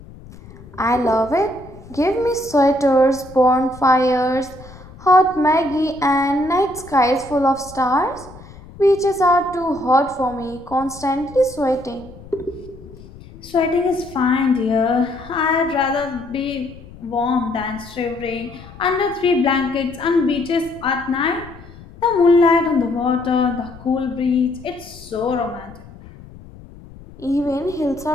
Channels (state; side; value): noise; left; rumble, 19 dB below the sound